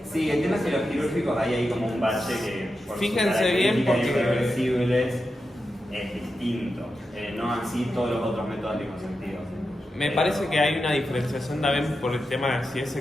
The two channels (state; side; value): normal; both; correlation 0.89